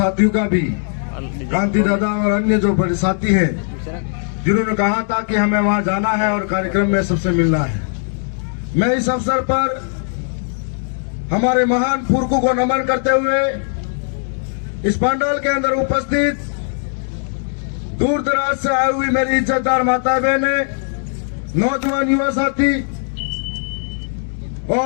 का भी, कांति दादा और अन्य जो बड़े साथी हैं जिन्होंने कहा था कि हमें वहां जाना है और कार्यक्रम में सबसे मिलना है। मैं इस अवसर पर हमारे महान पुरखों को नमन करते हुए इस पंडाल के अंदर उपस्थित दूर दराज से आई हुई मेरी इज्जतदार माता बहनें, नौजवान युवा साथी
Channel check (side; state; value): right; silent; 59 dB below the other